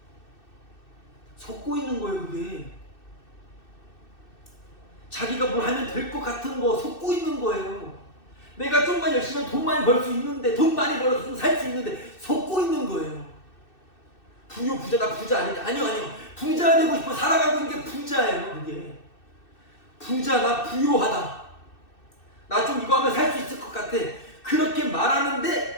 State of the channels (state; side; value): late; right; 2.6 ms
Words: 속고 있는 거예요, 그게. 자기가 뭘 하면 될 것 같은 거 속고 있는 거예요. 내가 좀만 열심히 하면 돈 많이 벌 수 있는데, 돈 많이 벌어서 살 수 있는데 속고 있는 거예요. 부요, 부자, 나 부자 아니다. 아니요. 부자 되고 싶어 살아가고 있는 게 부자예요, 그게. 부자, 나 부요하다. 나 좀 이거 하면 살 수 있을 것 같아. 그렇게